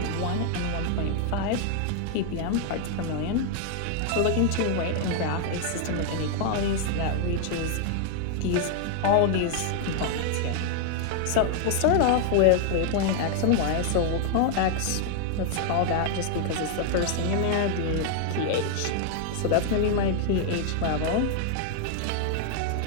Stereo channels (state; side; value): different; both; correlation 0.00